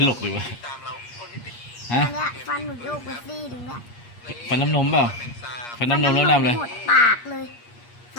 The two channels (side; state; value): right; late; 8.4 ms